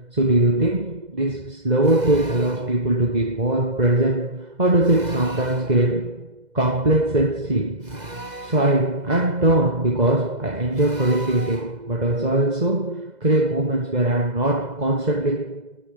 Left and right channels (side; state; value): left; late; 2.0 ms